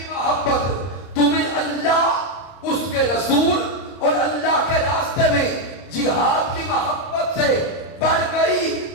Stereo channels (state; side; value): late; right; 30 ms